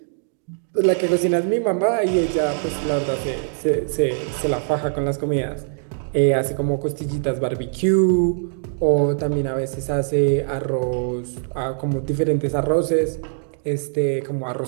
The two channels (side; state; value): left; silent; digital silence